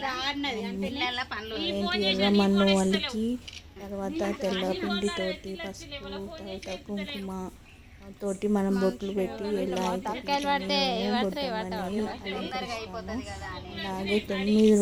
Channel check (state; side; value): identical; both; correlation 1.00